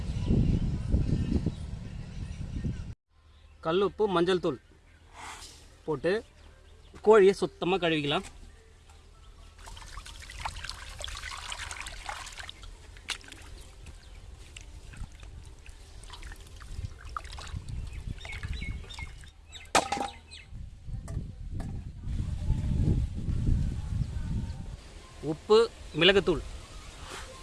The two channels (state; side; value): identical; both; correlation 1.00